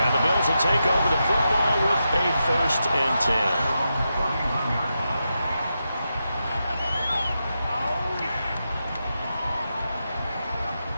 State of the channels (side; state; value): both; inverted; correlation -0.87